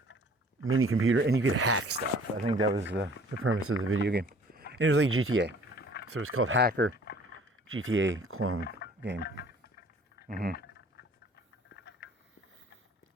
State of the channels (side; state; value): both; normal; correlation 0.53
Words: mini computer and you could hack stuff. I think that was the premise of the video game. And it was like GTA. So it was called Hacker GTA Clone Game.